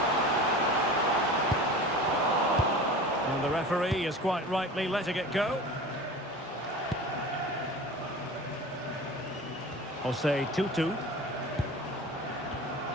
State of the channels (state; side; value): normal; both; correlation 0.36